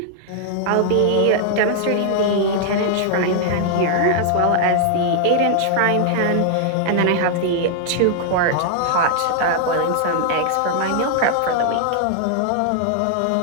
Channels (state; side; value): different; both; correlation -0.01